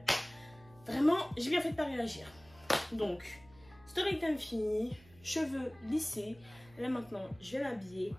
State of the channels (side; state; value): right; noise; hum, 25 dB below the sound